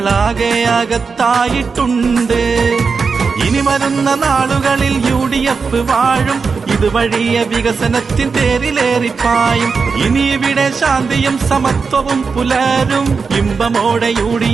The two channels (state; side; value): quieter; left; 5.1 dB